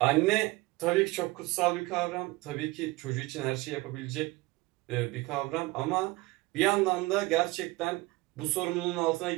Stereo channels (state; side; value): quieter; left; 21.6 dB